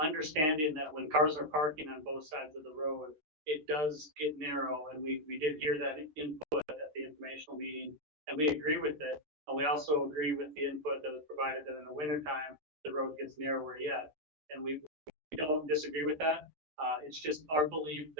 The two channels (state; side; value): late; left; 13 ms